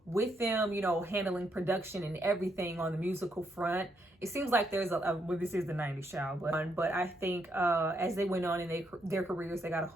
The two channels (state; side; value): normal; both; correlation 0.77